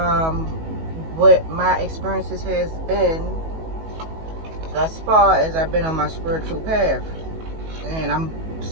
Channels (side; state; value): left; late; 19 ms